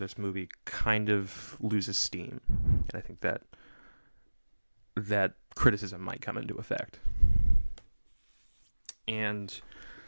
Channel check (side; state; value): both; inverted; correlation -1.00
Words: movie kind of loses steam. And I think that criticism might come into effect. And